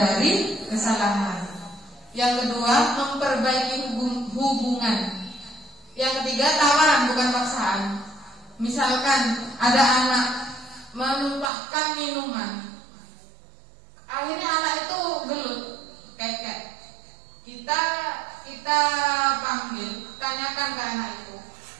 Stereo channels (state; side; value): drops out; left; at 11.5 s